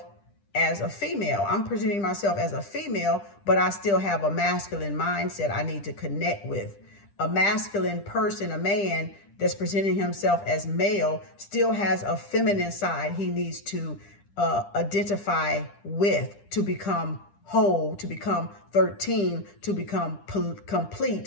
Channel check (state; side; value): late; right; 10 ms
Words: as a female. I'm presenting myself as a female, but I still have a masculine mindset I need to connect with. A masculine person, a man that's presenting himself as male, still has a feminine side he needs to identify with to become whole, to become 13, to become